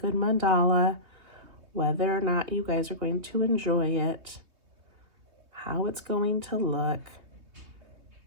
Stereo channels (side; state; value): left; late; 3.1 ms